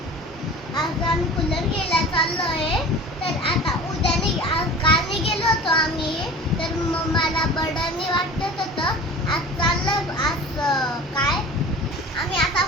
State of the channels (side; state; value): both; normal; correlation 0.40